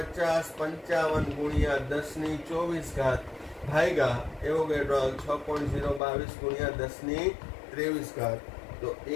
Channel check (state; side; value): drops out; right; at 6.0 s